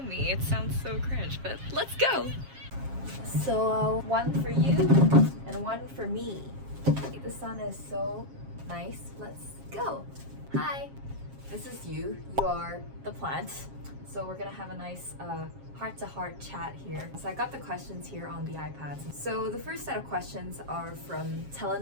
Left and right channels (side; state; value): left; late; 7.4 ms